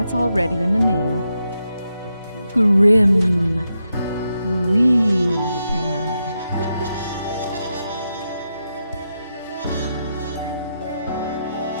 already in the name. Grim Reaper.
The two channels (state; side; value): inverted; both; correlation -0.85